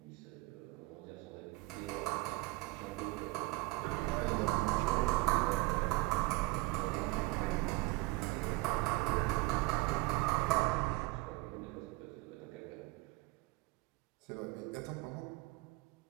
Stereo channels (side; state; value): left; quieter; 21.9 dB